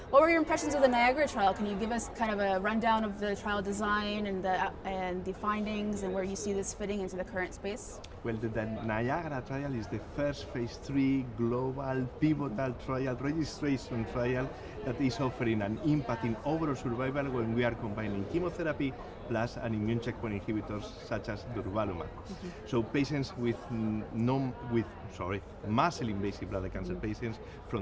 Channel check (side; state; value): both; identical; correlation 1.00